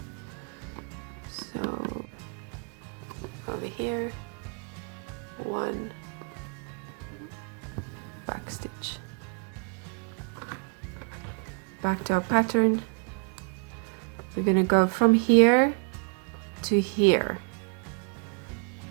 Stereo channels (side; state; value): left; quieter; 38.9 dB